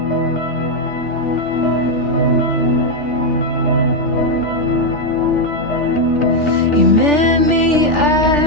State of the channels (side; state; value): right; late; 3.4 ms